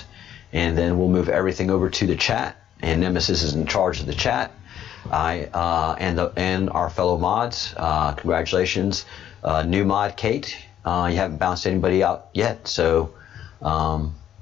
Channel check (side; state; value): right; quieter; 10.6 dB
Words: and then we'll move everything over to the chat. And Nemesis is in charge of the chat. And our fellow mods, congratulations, new mod Kate. You haven't bounced anybody out yet, so